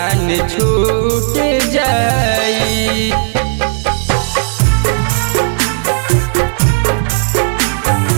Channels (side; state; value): left; silent; 68 dB below the other